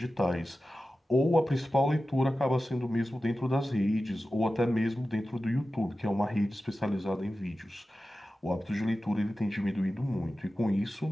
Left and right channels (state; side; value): normal; both; correlation 0.94